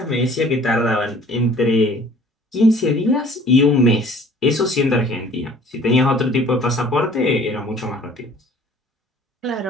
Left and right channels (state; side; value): normal; both; correlation 0.52